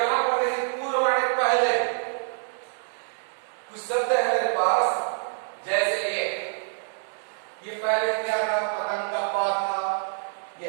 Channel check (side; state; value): left; silent; 61 dB below the other